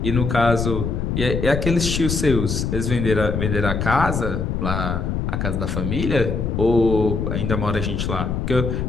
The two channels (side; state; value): left; noise; rumble, 1 dB below the sound